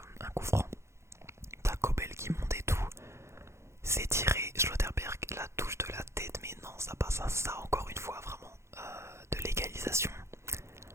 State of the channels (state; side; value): late; left; 0.13 ms